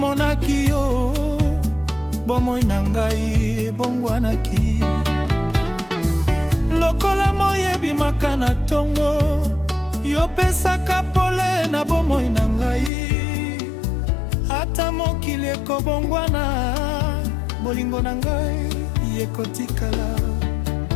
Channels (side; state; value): right; drops out; at 12.9 s